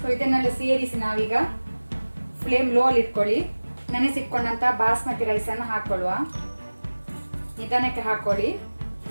ಸೊ ಇದನ್ನೆಲ್ಲ ಸೇರಿಸಿ ನಾವೀಗ ಫ್ಲೇಮ್ ಲೋ ಅಲ್ಲಿ ಇಟ್ಕೊಳ್ಳಿ. ನೆನೆಸಿಟ್ಕೊಂಡಂತ ಬಾಸ್ಮತಿ ರೈಸ್ ಅನ್ನು ಹಾಕೊಳ್ಳುವ. ನಿಧಾನಕ್ಕೆ ಹಾಕೊಳ್ಳಿ.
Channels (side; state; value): both; inverted; correlation -1.00